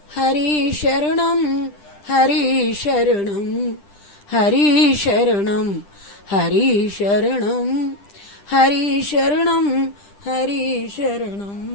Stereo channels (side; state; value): right; late; 10 ms